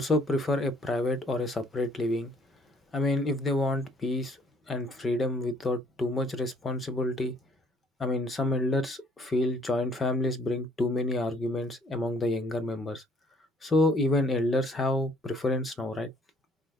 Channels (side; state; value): both; normal; correlation 0.62